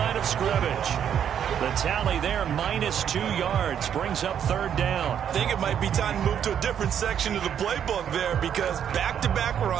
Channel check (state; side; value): quieter; left; 8.9 dB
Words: of scrimmage. The tally there, -2 yards, brings up 3rd down. I think it might be time to move to a different section of the playbook there, because back-to-back